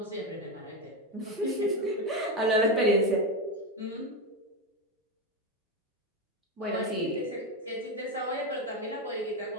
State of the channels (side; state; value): both; normal; correlation 0.13